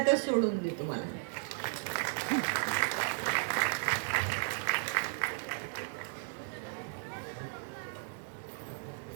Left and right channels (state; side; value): silent; left; 55 dB below the other